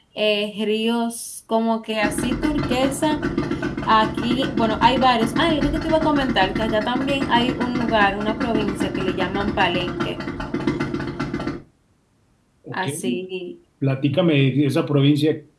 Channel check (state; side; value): identical; both; correlation 1.00